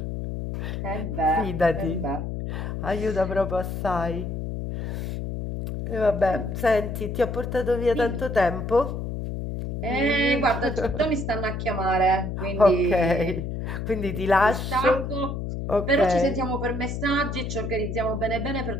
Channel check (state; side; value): noise; left; hum, 4 dB below the sound